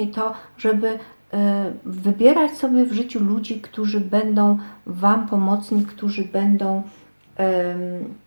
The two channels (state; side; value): inverted; both; correlation -1.00